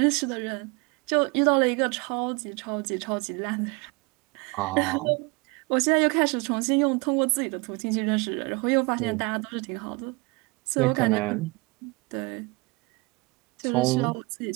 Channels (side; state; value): left; quieter; 27.0 dB